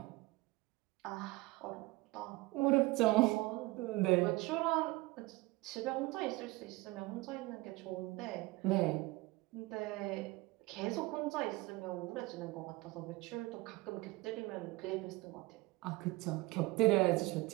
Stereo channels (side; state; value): left; quieter; 21.6 dB